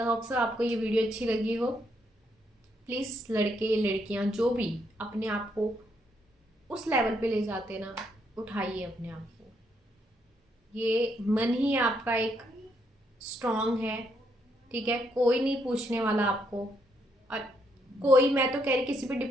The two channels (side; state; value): both; normal; correlation 0.75